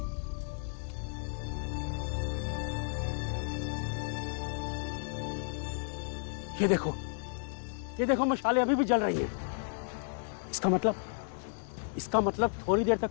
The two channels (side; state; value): right; silent; digital silence